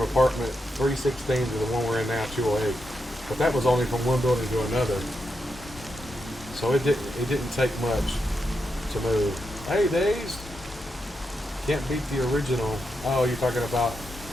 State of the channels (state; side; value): normal; both; correlation 0.85